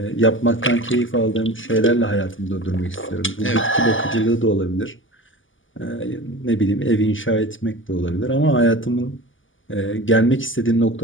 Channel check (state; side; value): late; right; 0.57 ms